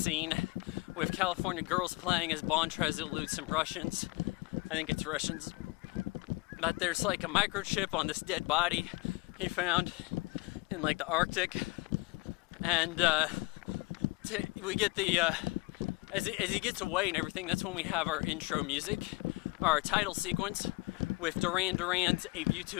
with California girls playing as Bond tries to elude some Russians. I think it's Russians. But there's like a microchip on this dead body he found in like the Arctic. And we get the, as he gets away and everything, that's when we have our intro music, our title sequence with Duran Duran's A View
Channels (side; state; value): right; quieter; 24.2 dB